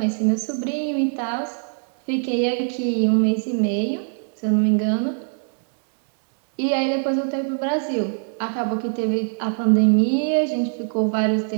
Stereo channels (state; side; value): silent; left; digital silence